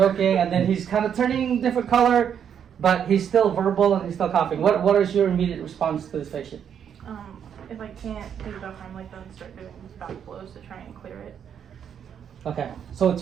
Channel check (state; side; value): quieter; left; 8.3 dB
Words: then he's kind of turning different color. But he's still verbal and he's still coughing. What is your immediate response to this patient? If I can't take enough time like that, start doing back blows to try and clear it. Okay, so it's